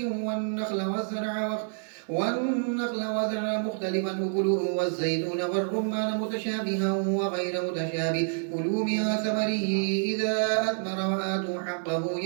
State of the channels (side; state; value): left; silent; digital silence